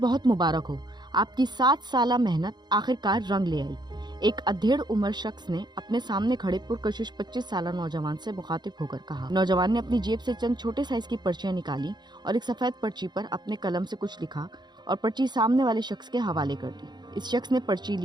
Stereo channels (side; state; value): left; late; 0.21 ms